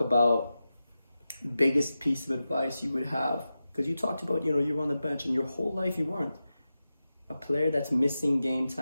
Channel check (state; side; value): inverted; both; correlation -0.92